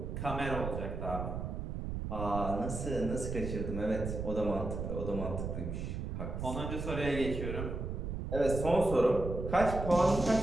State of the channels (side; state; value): right; noise; rumble, 4 dB below the sound